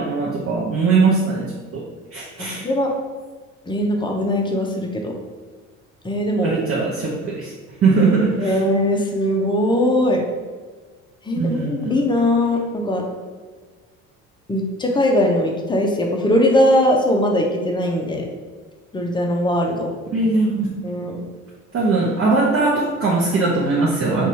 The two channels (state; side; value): normal; both; correlation 0.46